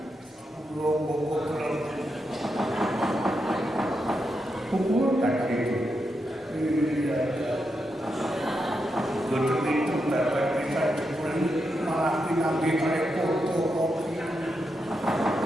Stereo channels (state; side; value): normal; both; correlation 0.85